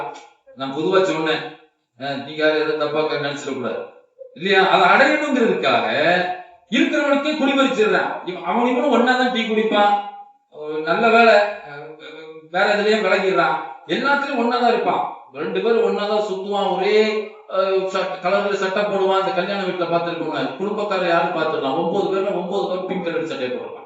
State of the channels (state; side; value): identical; both; correlation 1.00